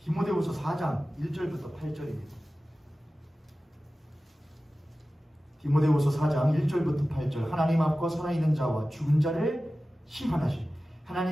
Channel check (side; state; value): both; normal; correlation 0.95